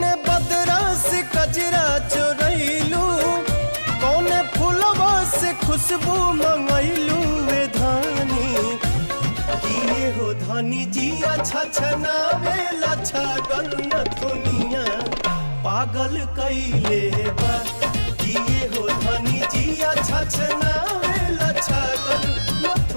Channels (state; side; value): inverted; both; correlation -1.00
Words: बदरा से कजरा चोरैलू, कौने फूलवा से खुशबू मंगैलू वे धानी। किए हो धानी जिया छछनावेला छगन दुनिया पागल कैले बा। किए हो धानी जिया छछनावेला छगन